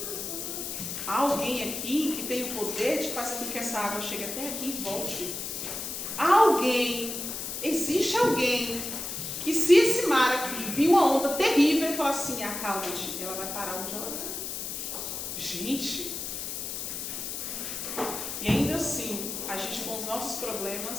Há alguém aqui que tem o poder de fazer com que essa água chegue até aqui e volte. Há alguém, existe alguém, que se esse mar aqui vir uma onda terrível e falar assim, acalma-te, ela vai parar onde ela está. Gente, e ainda assim, a gente com os nossos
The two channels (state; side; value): noise; left; hiss, 5 dB below the sound